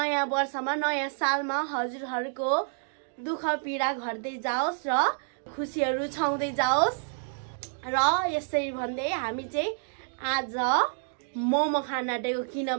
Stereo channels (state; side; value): silent; left; digital silence